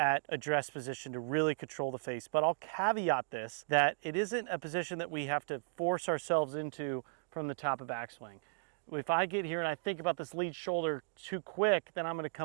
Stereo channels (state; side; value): silent; left; digital silence